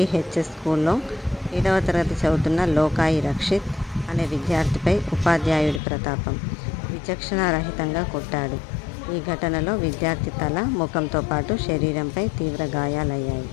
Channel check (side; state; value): right; drops out; at 5.8 s